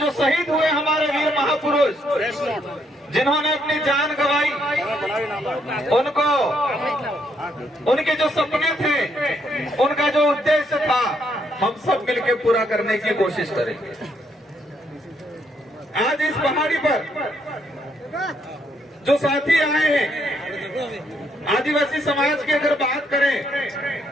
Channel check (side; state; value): both; normal; correlation 0.73